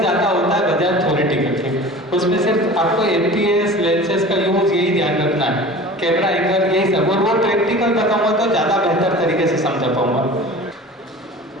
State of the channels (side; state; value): both; normal; correlation 0.39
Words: होता है बजाय थ्योरेटिकल के। उसमें सिर्फ आपको एफपीएस लेंसेज का यूज यही ध्यान रखना है, कैमरा एंगल यही सब, और वो प्रैक्टिकल बताऊंगा तो ज़्यादा बेहतर तरीके से समझा पाऊंगा।